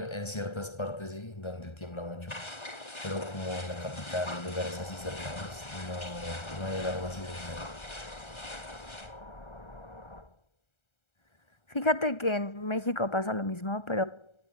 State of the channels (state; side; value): late; right; 1.3 ms